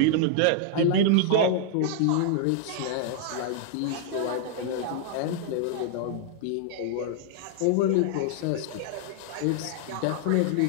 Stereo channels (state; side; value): different; both; correlation -0.01